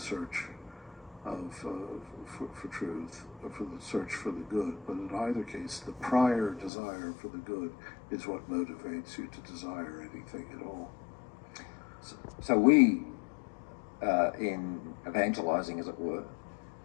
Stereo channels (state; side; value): drops out; right; at 6.7 s